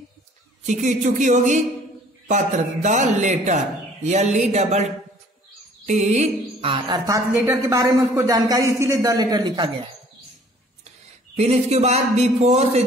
चुकी होगी पत्र, द लेटर, LETTER, अर्थात लेटर के बारे में उसको जानकारी, इसीलिए द लेटर लिखा गया है। फिर इसके बाद बिफोर से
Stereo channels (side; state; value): both; normal; correlation 0.55